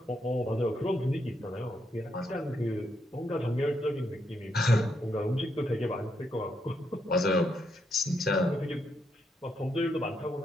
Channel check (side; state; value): both; normal; correlation 0.79